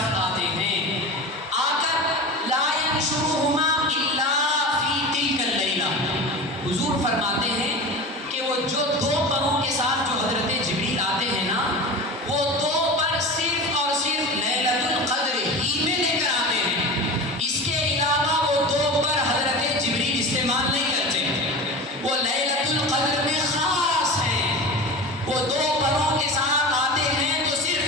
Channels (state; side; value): normal; both; correlation 0.31